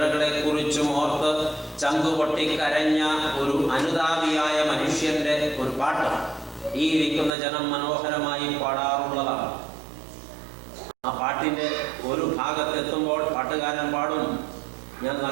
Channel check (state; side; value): drops out; left; at 7.3 s